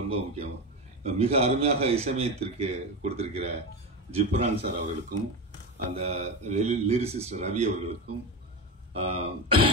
முக்கியம் மிக அருமையாக இசையமைத்திற்கு கொடுத்திருக்கிற ஜிப்ரான் சார் அவர்களுக்கும், அந்த லிரிசிஸ்ட் ரவி அவர்களுக்கும்,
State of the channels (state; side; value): normal; both; correlation 0.19